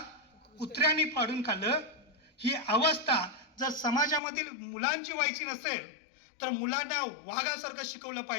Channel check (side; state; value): right; drops out; at 4.2 s